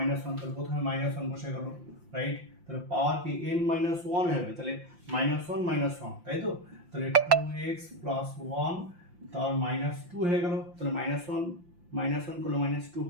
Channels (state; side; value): late; left; 5.8 ms